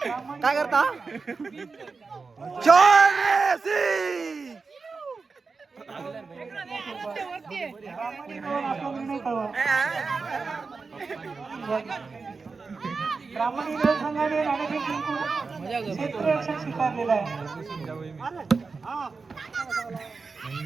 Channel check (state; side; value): quieter; left; 4.5 dB